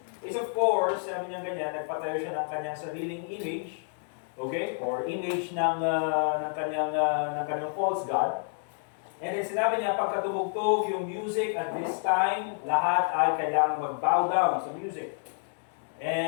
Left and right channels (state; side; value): silent; right; 58 dB below the other